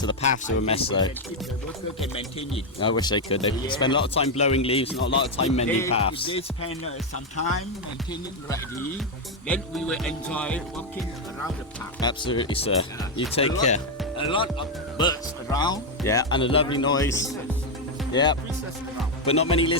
The paths are a mess, though. The worker can maintain it. I wish they could. They spend a lot of time blowing leaves, not a lot of time mending paths. If they spend some time maintaining rightly, then we will enjoy walking around the park. Absolutely, sir. You take care. A lot of birds around. Yeah, and a lovely noise. Yeah, but not many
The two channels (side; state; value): both; normal; correlation 0.04